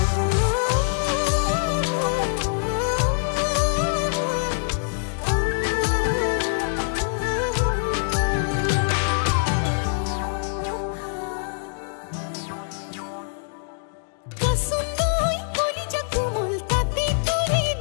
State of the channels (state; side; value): silent; right; digital silence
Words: kasundoi koli jakumol tate tore